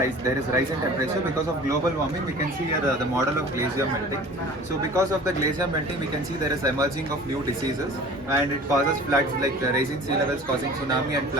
there is rise in temperature because of global warming. We can see here the model of glacier melting. So because of the glacier melting, we can see there is emerging of new diseases, and it causes floods, like raising sea levels, causing tsunami and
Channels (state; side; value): normal; both; correlation 0.43